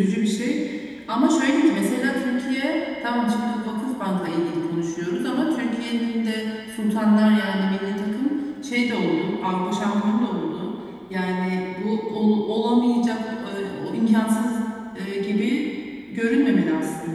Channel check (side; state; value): both; identical; correlation 1.00